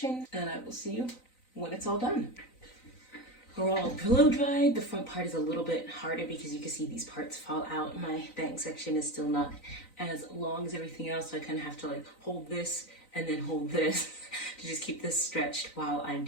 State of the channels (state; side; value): late; right; 3.9 ms